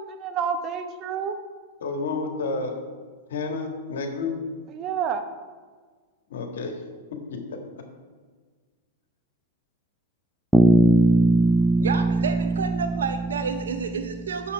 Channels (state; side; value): normal; both; correlation 0.67